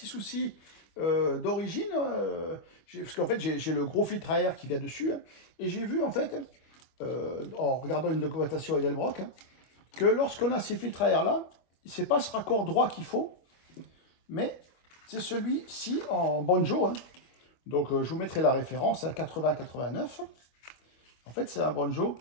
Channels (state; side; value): late; right; 25 ms